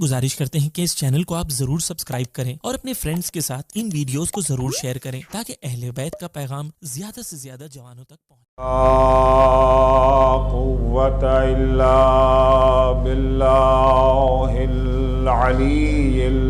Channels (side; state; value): both; identical; correlation 1.00